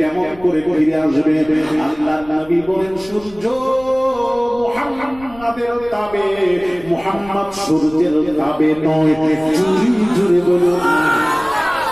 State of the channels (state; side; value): noise; left; rumble, 22 dB below the sound